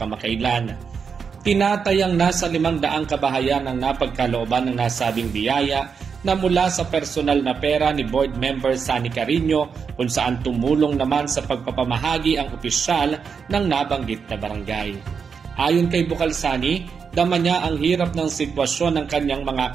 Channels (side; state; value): left; quieter; 6.1 dB